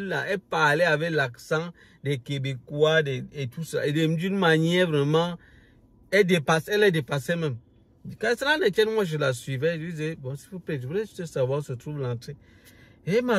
parlait avec l'accent des Québécois et tout ça, et d'une manière vraiment, elle est dépassée même. Quand cela ne tient, moi je la suivais, je lui disais, bon s'il vous plaît, je voulais juste savoir où se trouve l'entrée. Et elle m'a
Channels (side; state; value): both; identical; correlation 1.00